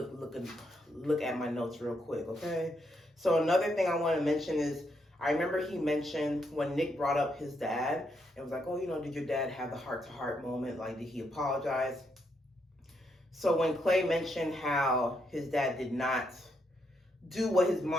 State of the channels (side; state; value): both; normal; correlation 0.78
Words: at my notes real quick, okay? So another thing I want to mention is, I remember he mentioned when Nick brought up his dad, and was like, oh, did your dad have the heart-to-heart moment? Like, did he apologize? So when Clay mentioned how his dad did not do what his